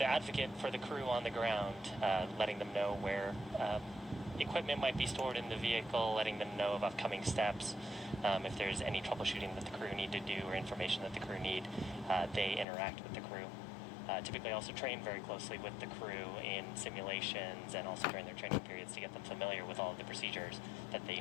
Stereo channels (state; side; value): drops out; right; at 12.7 s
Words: for the crew on the ground, letting them know where equipment might be stored in the vehicle, letting them know of upcoming steps. If there's any troubleshooting that the crew need to do or information that the crew need, they interact with the crew. Typically also train very closely with the crew in simulations and also during their training periods to get them familiar with all of the procedures that they